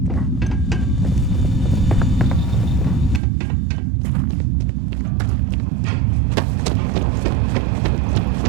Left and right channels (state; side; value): drops out; left; at 3.2 s